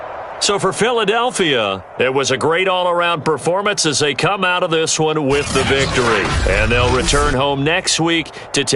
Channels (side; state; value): both; identical; correlation 1.00